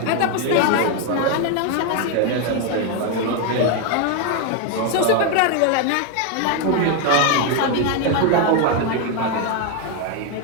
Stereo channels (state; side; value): different; both; correlation 0.01